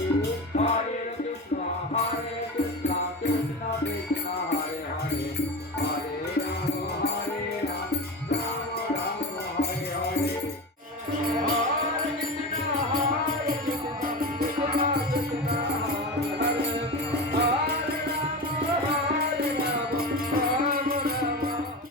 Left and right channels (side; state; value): both; normal; correlation 0.25